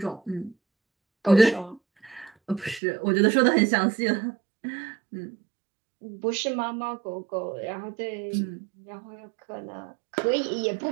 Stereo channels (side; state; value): left; drops out; at 2.8 s